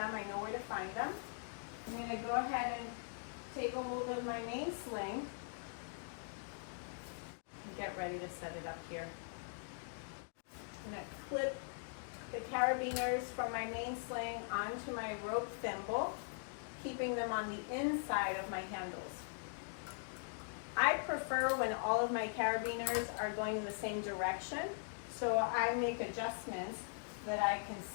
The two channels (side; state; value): right; silent; digital silence